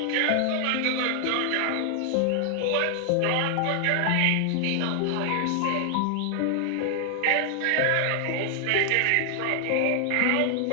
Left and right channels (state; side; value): different; both; correlation 0.00